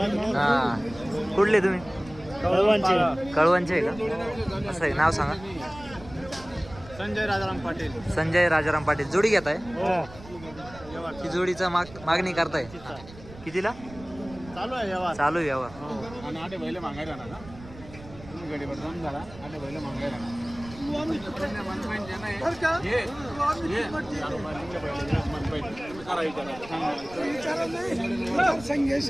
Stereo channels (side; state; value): right; noise; rumble, 18 dB below the sound